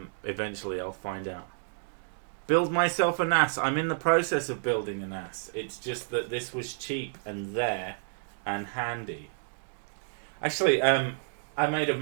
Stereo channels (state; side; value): silent; left; digital silence